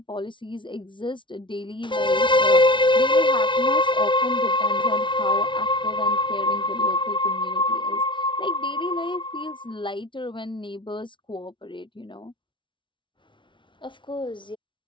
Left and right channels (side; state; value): right; late; 0.24 ms